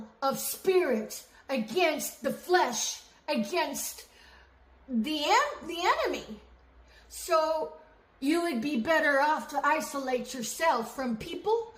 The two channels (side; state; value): both; identical; correlation 1.00